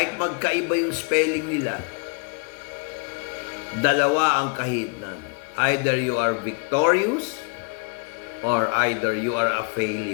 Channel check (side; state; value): right; quieter; 35.8 dB